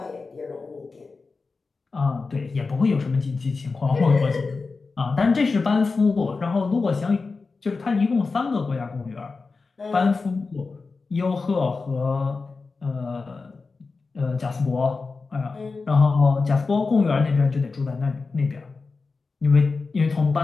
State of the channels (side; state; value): right; quieter; 4.2 dB